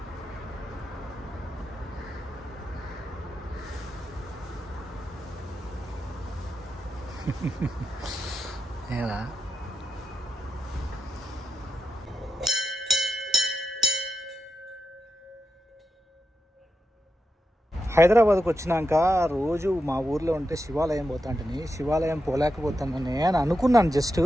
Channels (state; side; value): normal; both; correlation 0.87